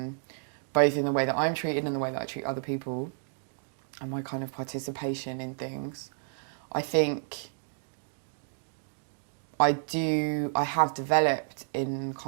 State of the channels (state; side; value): silent; left; digital silence